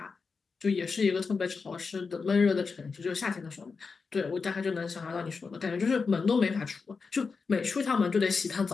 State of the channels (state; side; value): quieter; right; 4.9 dB